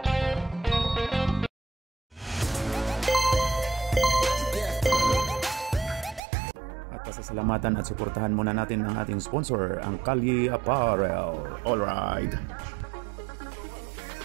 At pasasalamatan at suportahan muna natin ang ating sponsor, ang Kalye Apparel. Alright.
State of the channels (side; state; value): left; drops out; at 6.2 s